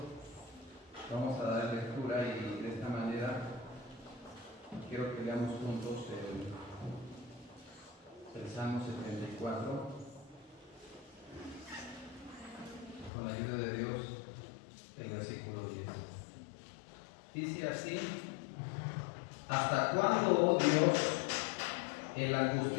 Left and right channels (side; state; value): right; drops out; at 13.1 s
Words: Vamos a dar lectura y de esta manera quiero que leamos juntos el Salmo 74 con la ayuda de Dios, el versículo 10. Dice así: ¿hasta cuándo, oh Dios, el